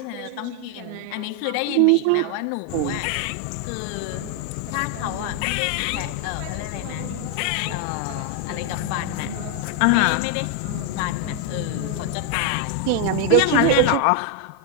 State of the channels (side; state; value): both; different; correlation 0.00